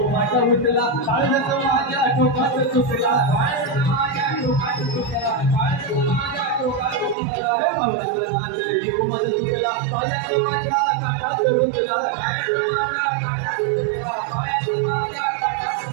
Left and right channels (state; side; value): drops out; left; at 7.2 s